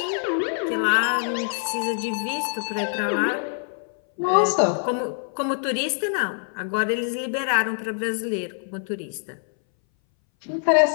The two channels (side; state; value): right; silent; 60 dB below the other